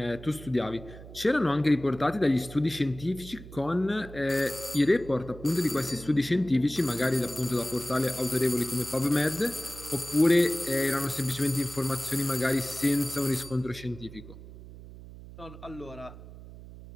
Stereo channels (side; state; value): right; noise; hum, 16 dB below the sound